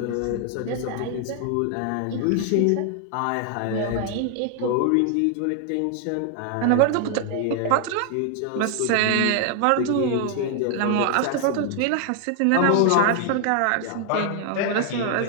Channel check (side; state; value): both; different; correlation 0.00